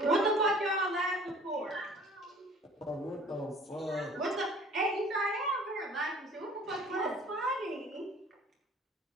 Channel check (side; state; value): both; normal; correlation 0.49